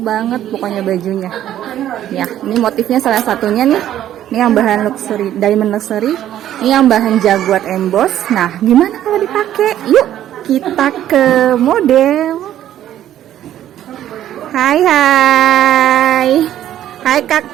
banget pokoknya bajunya ya. Ini motifnya salah satunya nih, ini yang bahan luxury, diamond luxury, ini yang bahan jaguar emboss. Nah gimana kalau dipakai? Yuk kita ke model. Hai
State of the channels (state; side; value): quieter; left; 11.8 dB